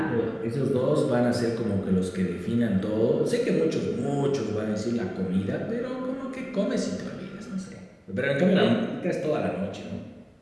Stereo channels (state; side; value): identical; both; correlation 1.00